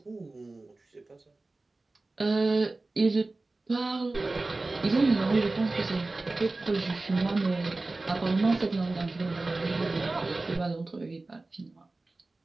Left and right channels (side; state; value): left; quieter; 3.2 dB